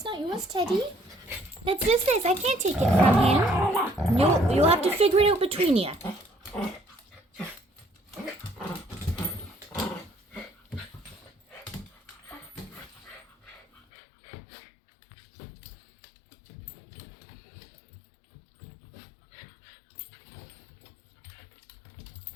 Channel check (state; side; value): drops out; right; at 13.8 s